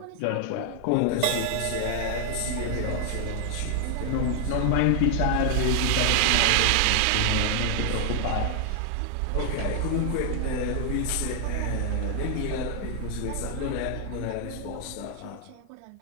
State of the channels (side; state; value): both; different; correlation 0.00